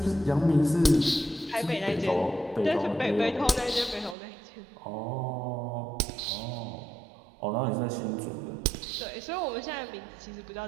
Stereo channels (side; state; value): left; drops out; at 4.2 s